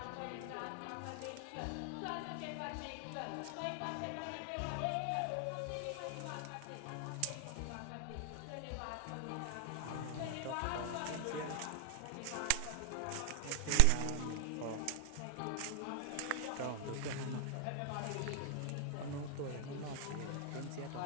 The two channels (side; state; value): both; different; correlation 0.00